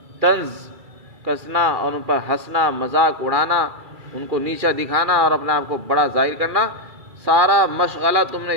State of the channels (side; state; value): left; late; 2.3 ms